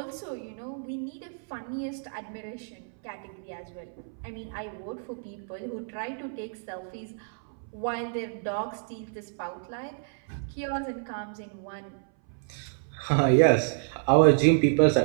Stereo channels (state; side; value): silent; left; 59 dB below the other